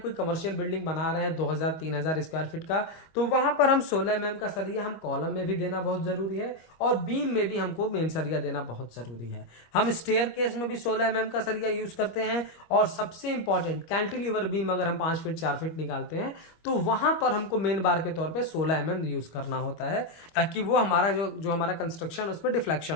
कमर्शियल बिल्डिंग बना रहे हैं 2000-3000 स्क्वायर फीट का, तो वहां पर हम 16 mm का सरिया हम कॉलम में भी देना बहुत जरूरी है, और बीम में भी हमको मेन सरिया देना बहुत जरूरी है। हम स्टेयर केस में भी 16 mm का सरिया यूज करते हैं, और सबसे इंपॉर्टेंट कैंटिलीवर बीम अगर हम 5 फीट 4 फीट निकालते हैं, तो वहां पर हमको मेन बार के तौर पर 16 mm यूज करना होता है, ताकि वो हमारा जो हमारा कंस्ट्रक्शन उसमें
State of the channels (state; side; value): late; right; 25 ms